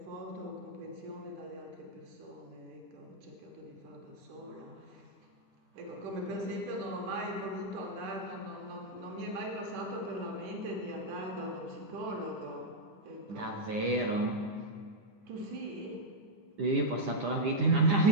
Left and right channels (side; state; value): left; late; 9.9 ms